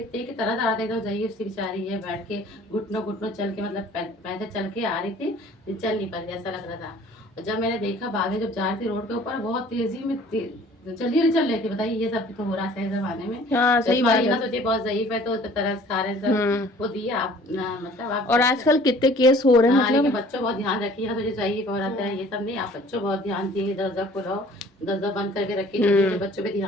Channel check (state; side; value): normal; both; correlation 0.52